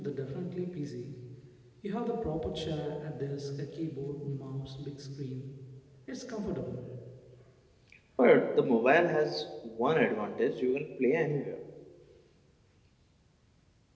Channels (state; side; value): identical; both; correlation 1.00